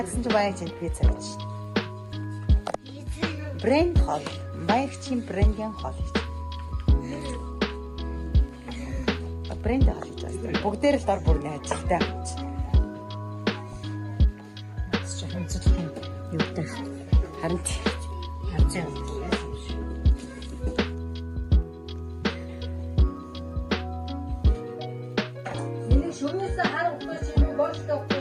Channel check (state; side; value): identical; both; correlation 1.00